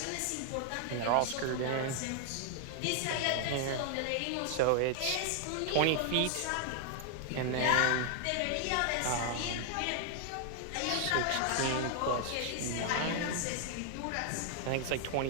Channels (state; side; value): different; both; correlation 0.00